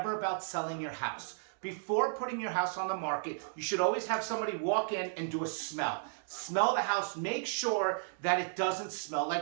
about selling your house, before putting your house on the market, you should always have somebody walk in and do a smell. Smell the house. Make sure that it doesn't smell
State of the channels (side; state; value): left; silent; digital silence